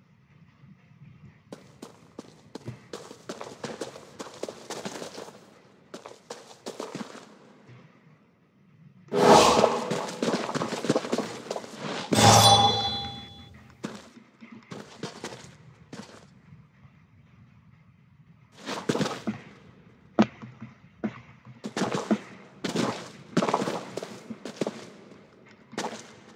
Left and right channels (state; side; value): identical; both; correlation 1.00